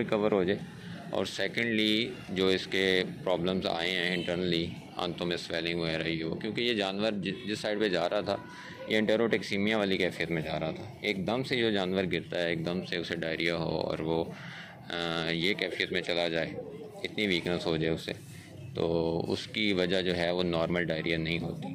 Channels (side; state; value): both; identical; correlation 1.00